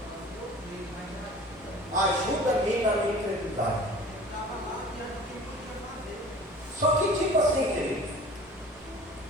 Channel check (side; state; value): both; normal; correlation 0.44